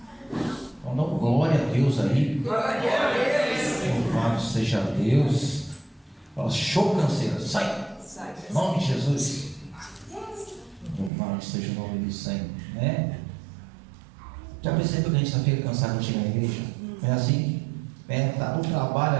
Então dá glória a Deus aí. Glória a Deus. Louvado seja Deus. Fala, show canseira, sai. Em nome de Jesus. Louvado seja o nome do Senhor, né? Já percebeu que a gente fica cansado de chegar na igreja? É assim? Tá no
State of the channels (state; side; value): drops out; left; at 11.1 s